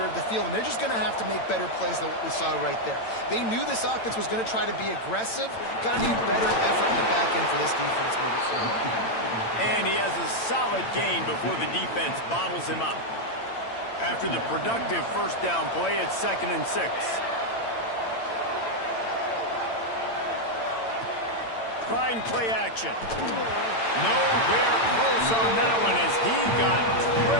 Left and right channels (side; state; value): right; late; 8.9 ms